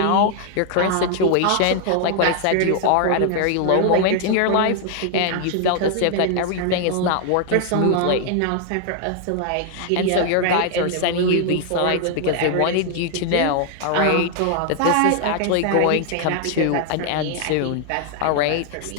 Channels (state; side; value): different; both; correlation 0.00